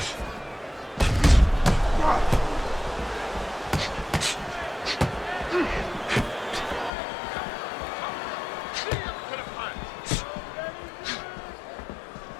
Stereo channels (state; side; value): drops out; right; at 6.9 s